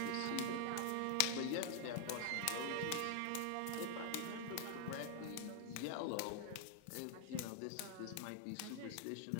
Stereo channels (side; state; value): both; different; correlation 0.00